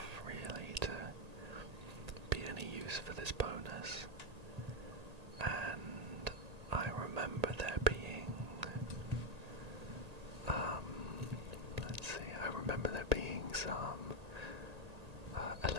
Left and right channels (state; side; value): late; left; 1.8 ms